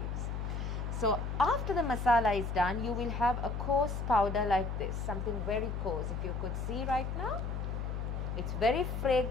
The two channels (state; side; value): noise; left; hum, 3 dB below the sound